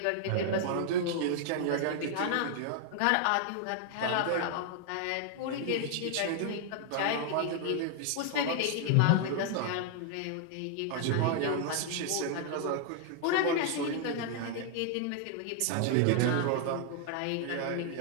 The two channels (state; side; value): different; both; correlation 0.00